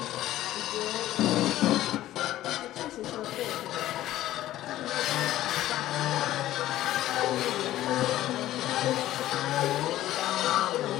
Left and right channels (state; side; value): quieter; right; 14.2 dB